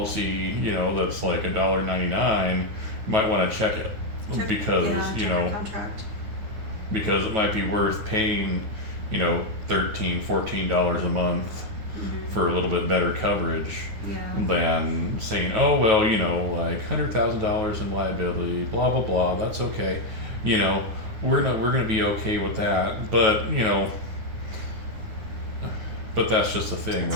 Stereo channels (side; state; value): left; late; 9.2 ms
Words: that's like $1.99, you might want to check it because check your contract. Because it might be worth paying, $13, $14 a month for a little bit better coverage than saying, oh well, like $100,000 in liability, blah blah blah. That's okay. We're gonna be okay with that, but but that's just the thing,